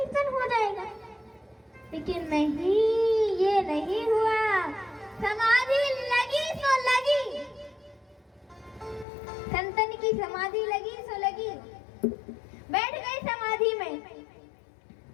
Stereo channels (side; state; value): right; drops out; at 9.1 s